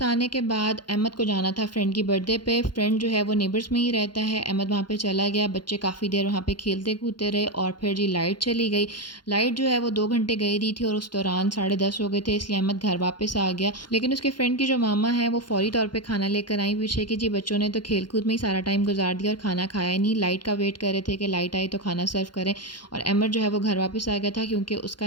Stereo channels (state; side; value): late; right; 0.71 ms